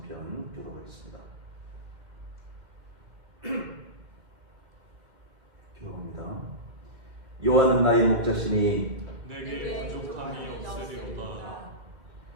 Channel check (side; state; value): left; late; 2.1 ms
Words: 교독하겠습니다. 교독합니다. 여호와는 나의 목자시니